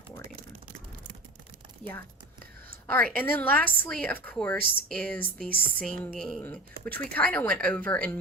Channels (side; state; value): both; normal; correlation 0.32